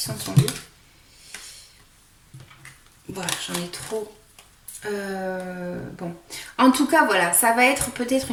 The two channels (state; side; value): identical; both; correlation 1.00